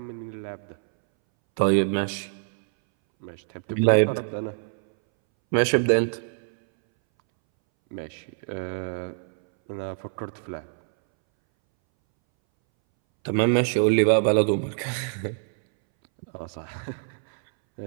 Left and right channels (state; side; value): silent; left; 61 dB below the other